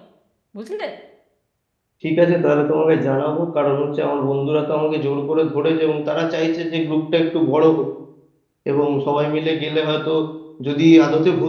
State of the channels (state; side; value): identical; both; correlation 1.00